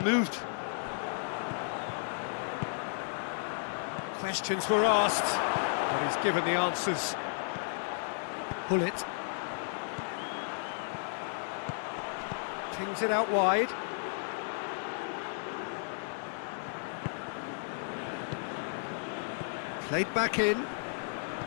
moved. Questions were asked, but he's given the answers. Pull it. Pings it out wide. Played back in.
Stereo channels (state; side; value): silent; right; digital silence